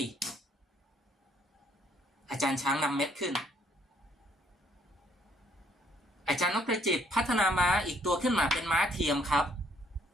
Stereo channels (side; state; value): both; normal; correlation 0.66